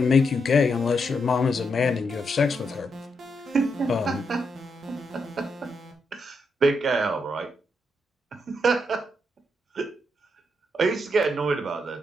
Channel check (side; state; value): both; normal; correlation 0.81